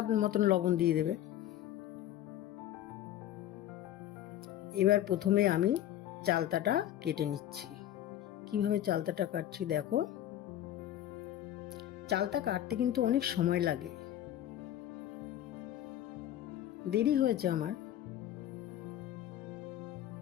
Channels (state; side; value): quieter; right; 12.3 dB